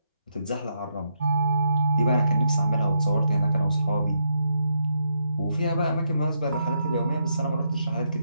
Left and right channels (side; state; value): both; inverted; correlation -0.80